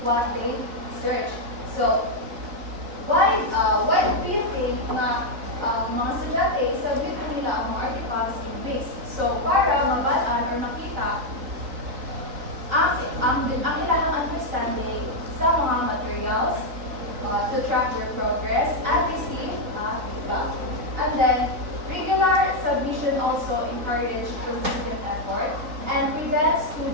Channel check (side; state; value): left; late; 3.8 ms